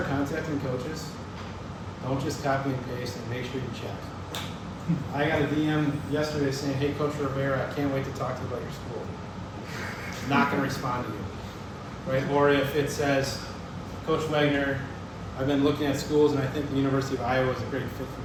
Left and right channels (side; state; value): both; identical; correlation 1.00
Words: contacting coaches, don't just copy and paste, and make sure you check. I got a DM yesterday saying, hey, Coach Rivera, I can't wait to talk to you about your school. Not going to respond to you. Right? Or if it says, Coach Wegner, I've been looking at schools and I think the University of Iowa is a great fit for